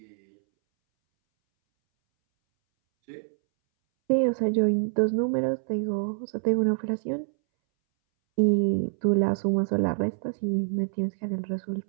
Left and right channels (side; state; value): left; silent; 61 dB below the other